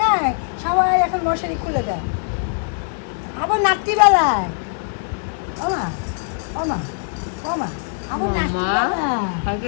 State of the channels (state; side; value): silent; right; digital silence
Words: সবাই এখন মশারি খুলে দেয়, আবার রাত্রিবেলায়। ওমা ওমা ওমা, আবার রাত্রিবেলায়। কালকে